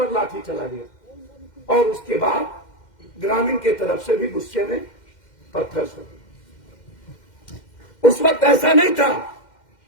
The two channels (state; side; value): late; right; 2.1 ms